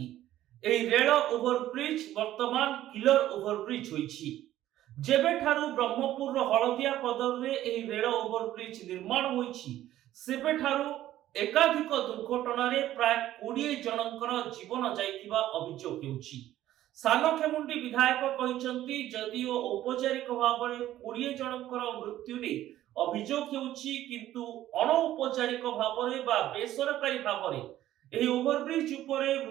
एही रेल ओभरब्रिज वर्तमान किलर ओभरब्रिज होइछि जेबेठारु ब्रह्मपुर हलदिया पदर रे एही रेल ओवरब्रिज निर्माण होईछि सेबेठारु एकाधिक दुर्घटना रे प्राय 20 जनकर जीवन जाइथिबा अभियोग हेउछि। सानखेमुंडी विधायक कहिसंती जदिओ औपचारिक भाव में 20 जनकर मृत्यु रे अभियोग हेउछि किंतु अनौपचारिक भाव में बा बेसरकारी भाव में एही ओवरब्रिज उपरे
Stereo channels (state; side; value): quieter; left; 13.5 dB